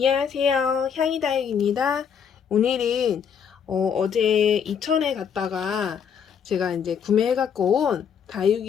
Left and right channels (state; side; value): quieter; right; 7.4 dB